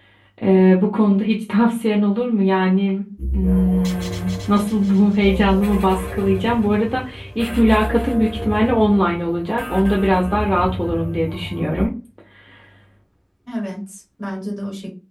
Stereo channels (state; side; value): identical; both; correlation 1.00